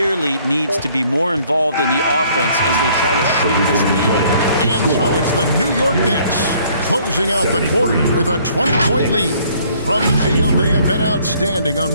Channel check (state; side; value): inverted; both; correlation -0.61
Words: needs to be more involved in the offense as they try to shrink this lead. And so it's the New York Knicks closing out the quarter with a 20-point lead. From the field, they have been outstanding.